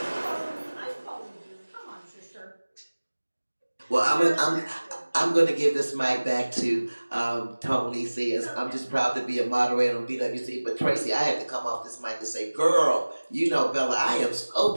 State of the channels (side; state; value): both; inverted; correlation -1.00